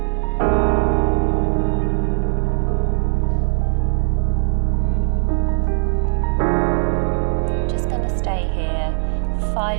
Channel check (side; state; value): left; silent; 61 dB below the other